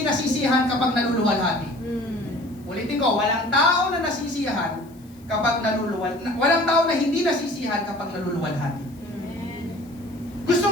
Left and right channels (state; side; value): noise; left; hiss, 29 dB below the sound